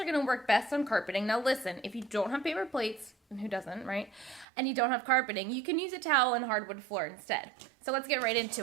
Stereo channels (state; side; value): drops out; left; at 4.5 s